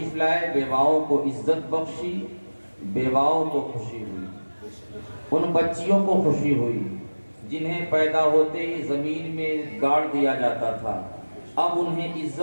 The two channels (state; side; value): inverted; both; correlation -1.00